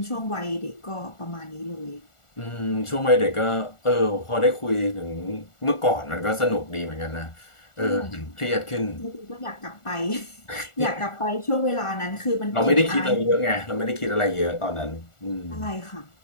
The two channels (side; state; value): right; late; 1.4 ms